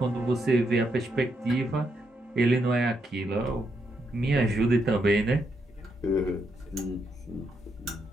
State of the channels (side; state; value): both; normal; correlation 0.79